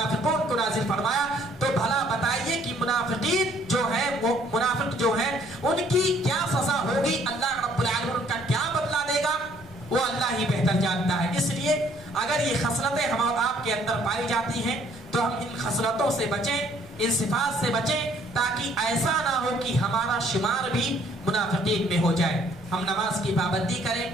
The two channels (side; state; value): left; noise; rumble, 24 dB below the sound